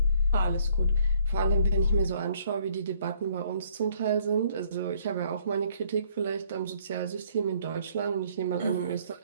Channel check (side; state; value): both; inverted; correlation -0.63